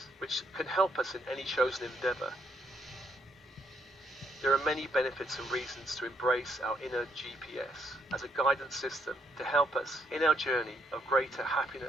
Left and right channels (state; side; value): normal; both; correlation 0.74